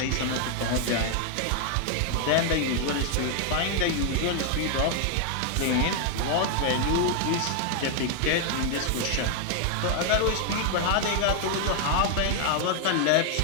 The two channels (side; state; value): both; different; correlation 0.00